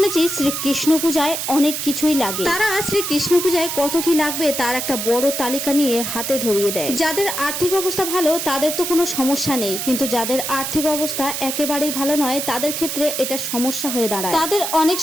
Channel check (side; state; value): right; noise; hiss, 3 dB below the sound